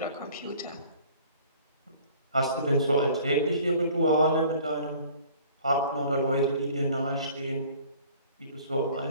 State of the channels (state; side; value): inverted; both; correlation -0.51